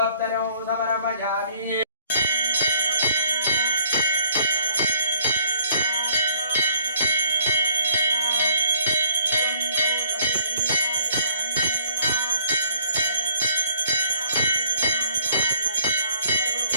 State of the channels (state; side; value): inverted; both; correlation -0.61